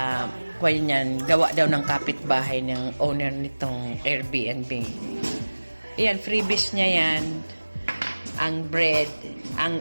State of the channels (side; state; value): both; inverted; correlation -1.00